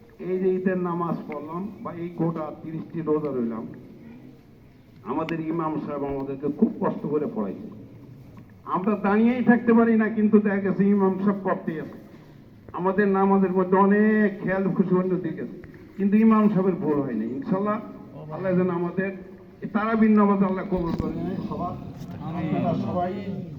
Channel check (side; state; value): both; identical; correlation 1.00